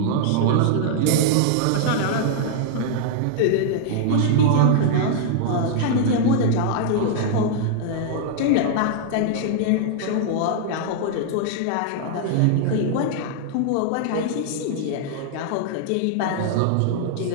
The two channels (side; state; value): both; different; correlation -0.01